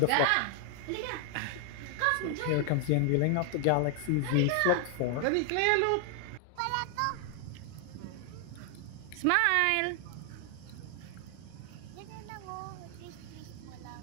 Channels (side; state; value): both; different; correlation 0.00